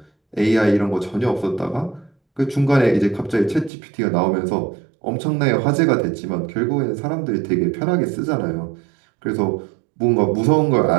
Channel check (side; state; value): left; drops out; at 3.7 s